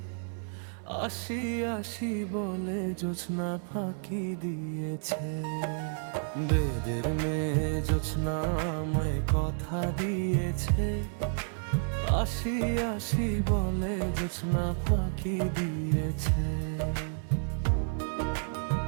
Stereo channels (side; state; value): left; silent; 57 dB below the other